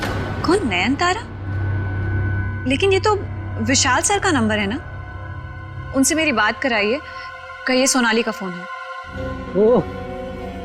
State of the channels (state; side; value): identical; both; correlation 1.00